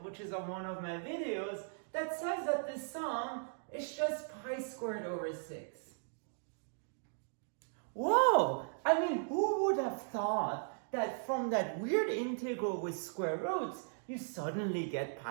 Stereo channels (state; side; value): silent; left; digital silence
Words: which is on one of my videos, that says that the sum is just pi squared over 6. Whoa! I mean, who would have thought that from that weird integral with square roots, you suddenly get